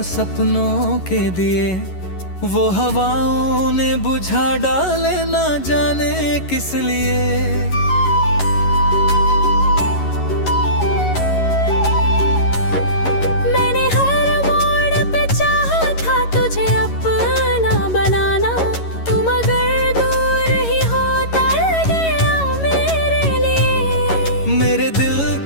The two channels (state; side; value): late; right; 11 ms